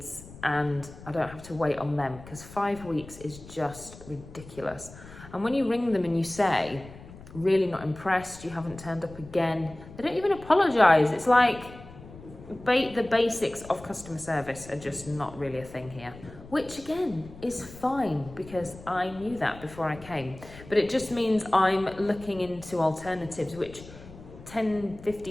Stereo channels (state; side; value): noise; left; rumble, 18 dB below the sound